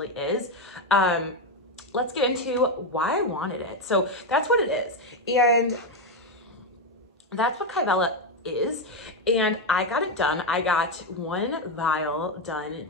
is. Let's get into why I wanted it. So that's what it is. And that's what kybella is. And I got it done. I got one vial done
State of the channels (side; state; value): both; normal; correlation 0.08